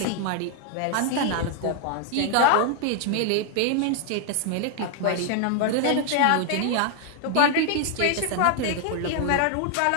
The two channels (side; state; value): both; different; correlation 0.00